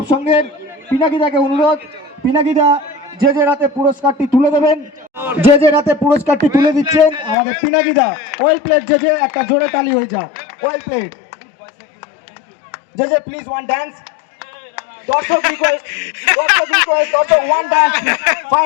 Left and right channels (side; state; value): right; drops out; at 7.4 s